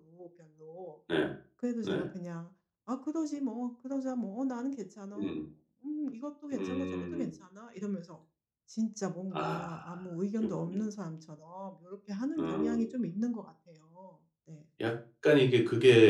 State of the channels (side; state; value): both; identical; correlation 1.00